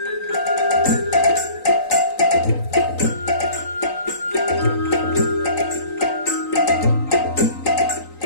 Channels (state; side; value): late; right; 3.9 ms